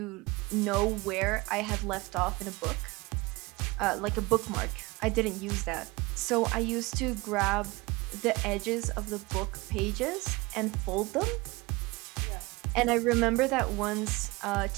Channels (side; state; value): left; quieter; 23.5 dB